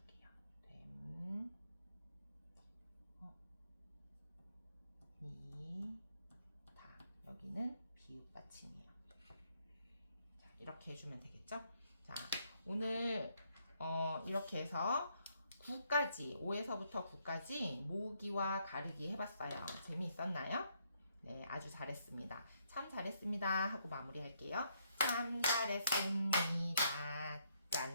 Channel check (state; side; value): inverted; both; correlation -0.73